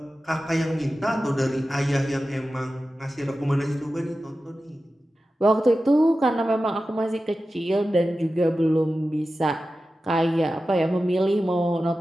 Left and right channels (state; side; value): normal; both; correlation 0.94